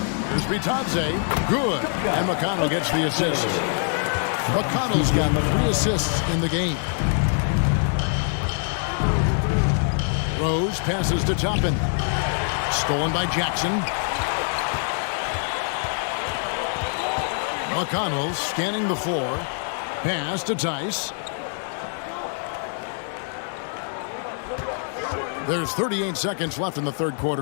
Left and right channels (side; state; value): right; silent; 60 dB below the other